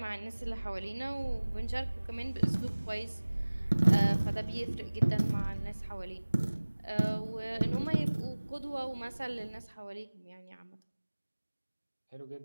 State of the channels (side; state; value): both; inverted; correlation -1.00